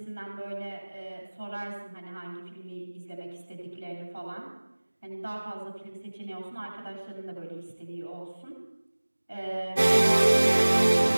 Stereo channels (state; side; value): inverted; both; correlation -1.00